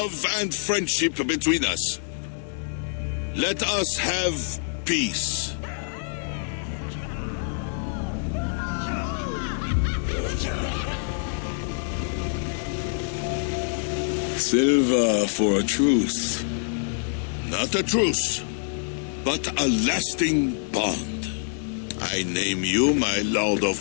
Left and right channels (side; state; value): right; silent; digital silence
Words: and friendship between us. Let us have peace. Silver for a truce. Not a truce, but a lasting bond. I name you my Lord of